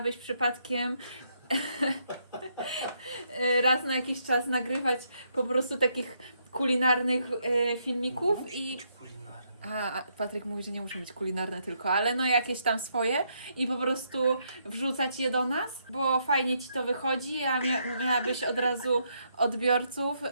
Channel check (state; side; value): inverted; both; correlation -0.76